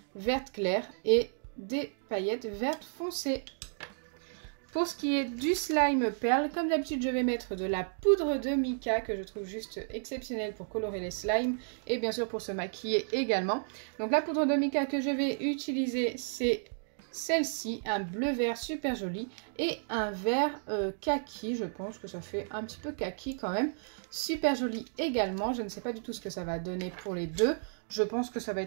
vertes claires et des paillettes vertes foncées. Pour ce qui est du slime perle, comme d'habitude, je vais mettre de la poudre de mica que je trouve juste exceptionnelle pour colorer les slimes et bien sûr pour se maquiller également. Donc la poudre de mica que je vais utiliser, c'est celle-ci, un bleu vert super joli et un vert kaki, je pense que ça fait un petit peu kaki quand même. Super joli également, je ne sais pas du tout ce que ça va donner pour les deux. Je pense que ça va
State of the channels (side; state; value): left; silent; digital silence